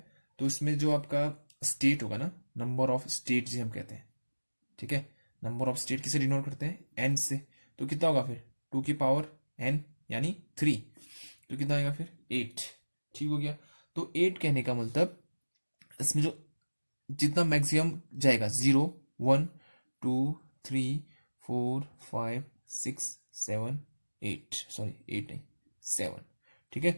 तो इसमें जो आपका स्टेट होगा ना, नंबर ऑफ स्टेट जिसे हम कहते हैं। ठीक है, नंबर ऑफ स्टेट किसे डिनोट करते हैं, एन से, तो कितना होगा फिर 2 की पावर एन यानी 3, तो कितना आएगा फिर 8। ठीक हो गया। तो 8 कहने का मतलब इसमें जो जितना मैक्सिमम जाएगा 0 1 2 3 4 5 6 7 8, सॉरी 8 नहीं 7। ठीक है,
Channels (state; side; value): inverted; both; correlation -1.00